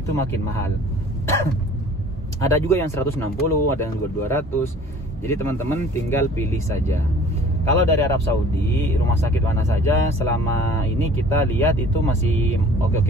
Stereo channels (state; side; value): normal; both; correlation 0.49